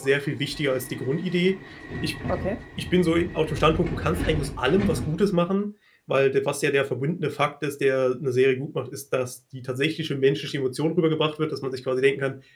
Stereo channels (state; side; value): identical; both; correlation 1.00